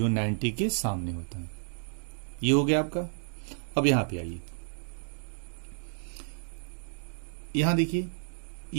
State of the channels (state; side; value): silent; left; digital silence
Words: 90 के सामने होता है। ये हो गया आपका। अब यहां पे आइए, यहां देखिए